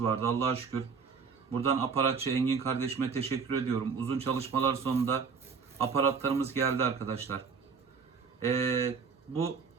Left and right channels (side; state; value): left; quieter; 5.6 dB